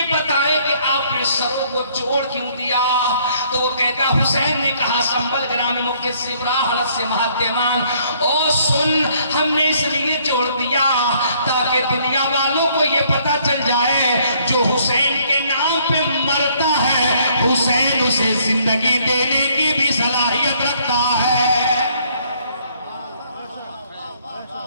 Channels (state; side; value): inverted; both; correlation -0.64